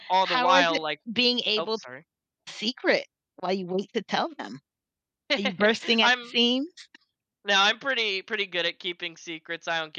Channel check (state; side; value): identical; both; correlation 1.00